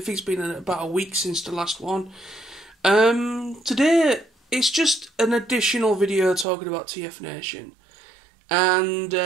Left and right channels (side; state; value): left; drops out; at 6.5 s